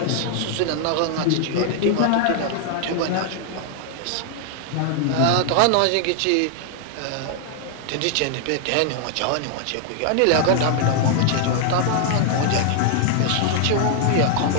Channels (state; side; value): different; both; correlation 0.00